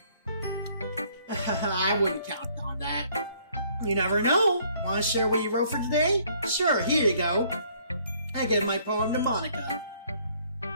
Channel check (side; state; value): both; inverted; correlation -0.63